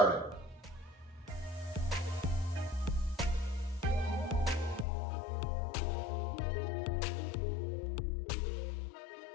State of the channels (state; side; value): drops out; right; at 4.9 s